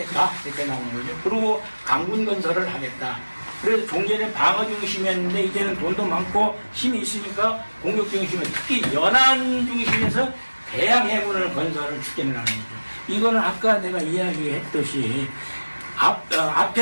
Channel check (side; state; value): both; inverted; correlation -1.00